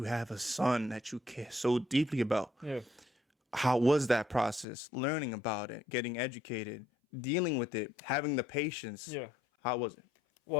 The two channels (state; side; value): drops out; right; at 4.7 s